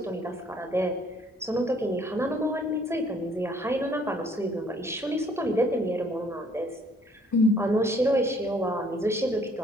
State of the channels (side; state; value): both; normal; correlation 0.61